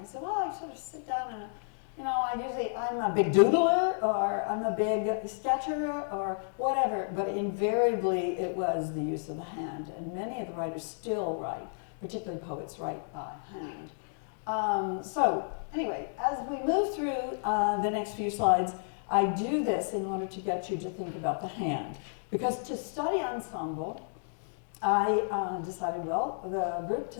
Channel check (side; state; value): right; silent; digital silence